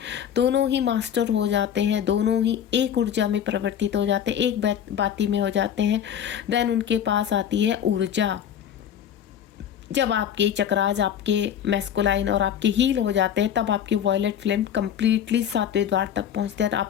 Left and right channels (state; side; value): quieter; right; 9.3 dB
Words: ही मास्टर हो जाते हैं, दोनों ही एक ऊर्जा में परिवर्तित हो जाते हैं, एक बाती में हो जाते हैं। देन उनके पास आती है ऊर्जा। जब आपके चक्रास, आपके मैस्कुलाइन और आपके हील हो जाते हैं, तब आपकी वॉयलेट फ्लेम कंप्लीटली 7वें द्वार तक पहुंचते हैं,